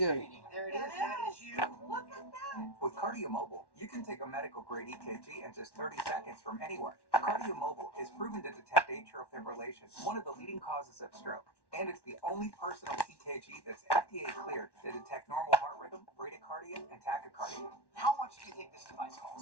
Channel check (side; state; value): right; late; 1.1 ms